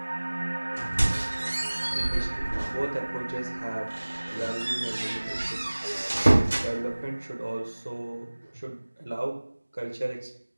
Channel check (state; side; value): inverted; both; correlation -1.00